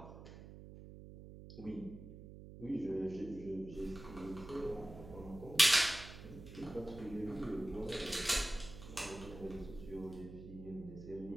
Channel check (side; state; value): right; noise; hum, 14 dB below the sound